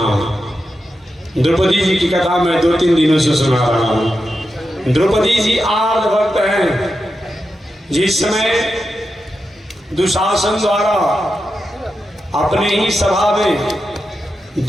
द्रौपदी जी की कथा मैं 2-3 दिनों से सुना रहा हूँ। द्रौपदी जी आर्त भक्त हैं। जिस समय दुशासन द्वारा अपने ही सभा में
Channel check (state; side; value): normal; both; correlation 0.89